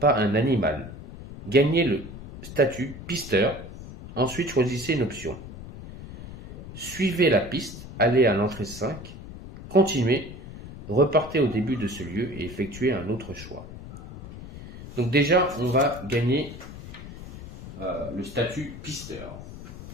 un animal. Gagnez le statut pisteur, ensuite choisissez une option. Suivez la piste, allez à l'entrée 5, continuez, repartez au début de ce lieu et effectuez un autre choix. Donc déjà, on va gagner le statut pisteur.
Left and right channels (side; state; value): left; noise; rumble, 13 dB below the sound